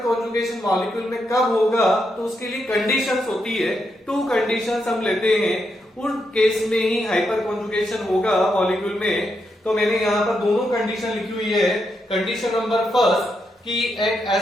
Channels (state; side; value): normal; both; correlation 0.82